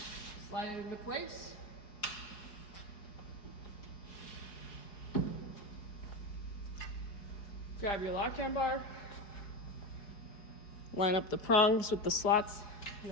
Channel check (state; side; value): late; right; 4.7 ms